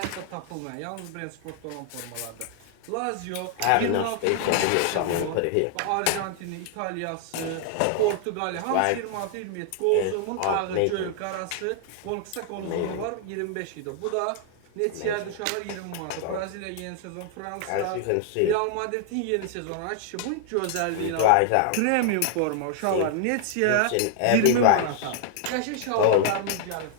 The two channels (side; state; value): both; different; correlation 0.00